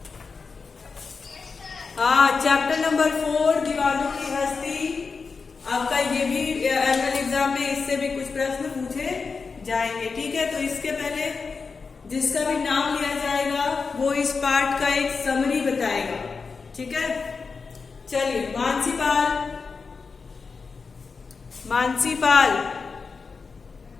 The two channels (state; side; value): quieter; right; 4.8 dB